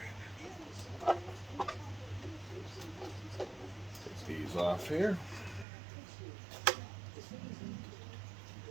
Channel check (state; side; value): drops out; left; at 5.7 s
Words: right. Take these off here.